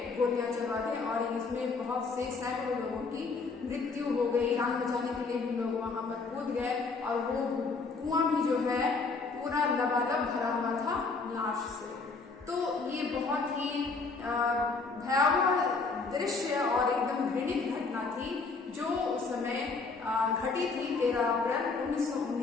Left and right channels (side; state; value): right; quieter; 4.3 dB